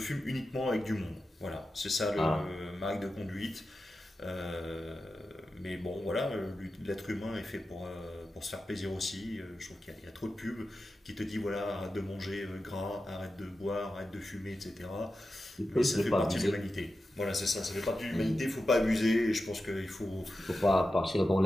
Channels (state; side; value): normal; both; correlation 0.92